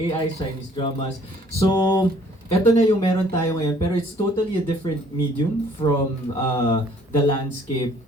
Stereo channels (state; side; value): normal; both; correlation 0.59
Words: Chinese dramas. So, eto na yung meron tayo ngayon, pero it's totally a different medium from the landscape